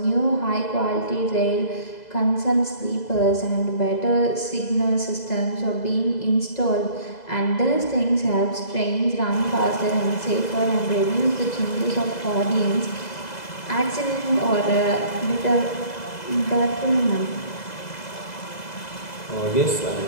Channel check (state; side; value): late; right; 2.0 ms